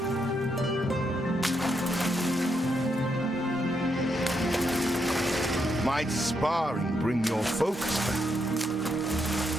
might sparring bring your focus back?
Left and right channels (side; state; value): both; normal; correlation 0.80